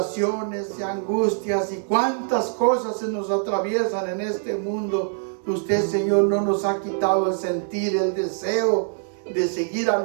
y angustias y cuántas cosas se nos atraviesan en este mundo, usted, Señor, no nos ha quitado el sentir, el deseo de seguir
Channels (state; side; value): silent; left; digital silence